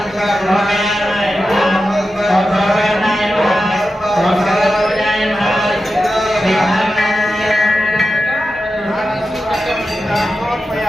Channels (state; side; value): normal; both; correlation 0.91